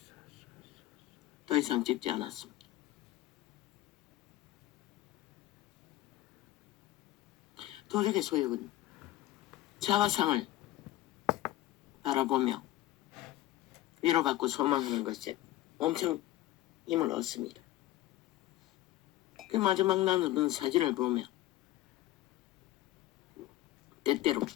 더 이상 찍지 않았습니다. 도적의 소욕은 자화상을 바라보며 위로받고 소망하는 것에 엄청 힘을 얻습니다. 그 마지막 나누는 사진을 보며 때때로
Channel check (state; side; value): quieter; right; 15.8 dB